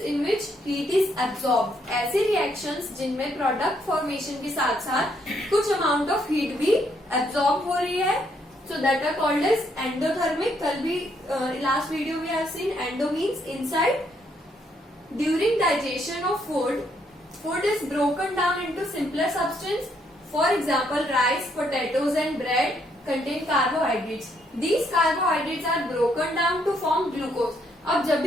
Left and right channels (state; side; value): normal; both; correlation 0.72